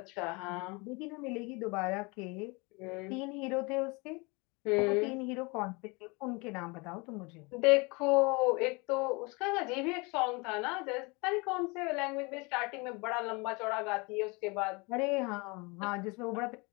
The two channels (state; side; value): quieter; right; 27.8 dB